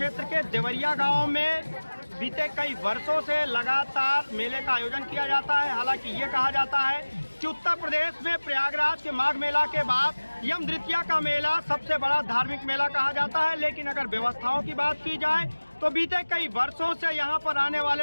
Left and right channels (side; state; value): both; inverted; correlation -1.00